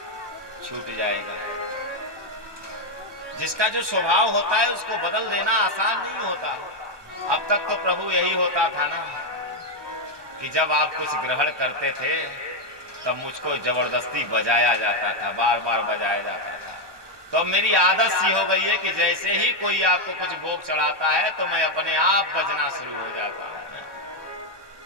छूट जाएगा। जिसका जो स्वभाव होता है उसको बदल देना आसान नहीं होता। अब तक तो प्रभु यही होता था ना कि जब आप कुछ ग्रहण करते थे तब मुझको जबरदस्ती बजाया जाता था, बार बार बजाया जाता था। तो अब मेरी आदत सी हो गई है कि जैसे ही कोई आपको कुछ भोग चढ़ाता है तो मैं अपने आप बजना शुरू हो जाता हूं।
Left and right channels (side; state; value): left; late; 1.2 ms